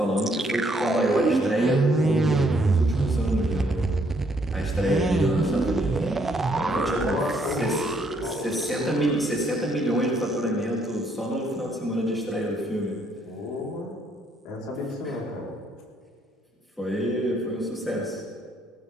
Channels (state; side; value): normal; both; correlation 0.70